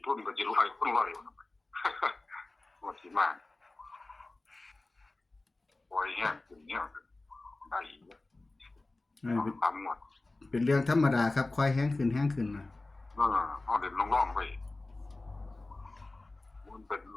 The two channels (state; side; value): quieter; right; 3.1 dB